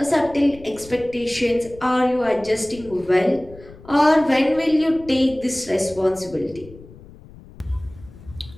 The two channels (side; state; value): left; noise; rumble, 20 dB below the sound